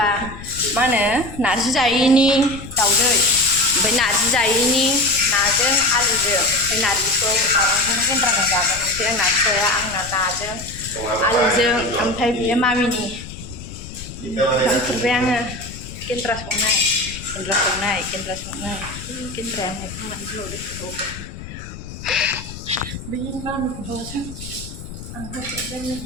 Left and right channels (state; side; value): noise; left; rumble, 12 dB below the sound